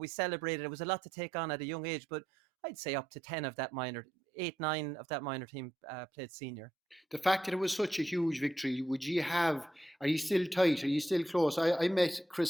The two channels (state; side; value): normal; both; correlation 0.81